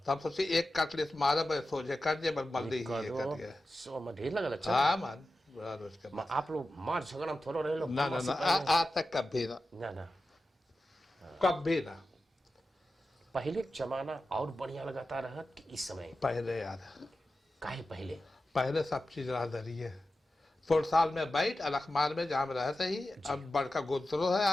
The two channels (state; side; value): normal; both; correlation 0.93